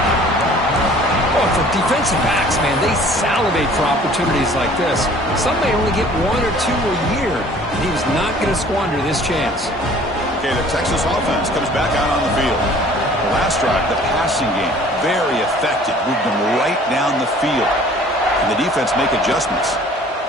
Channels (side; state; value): both; normal; correlation 0.51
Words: Oh, for defensive backs, man, they salivate for opportunities like this. Some may only get one or two a year, and he was not going to squander this chance. Okay, the Texas offense comes back out on the field. The last drive, the passing game, very effective. Moved them right down the field. And the defense make adjustments.